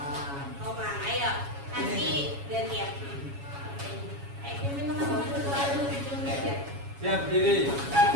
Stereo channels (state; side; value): late; left; 7.2 ms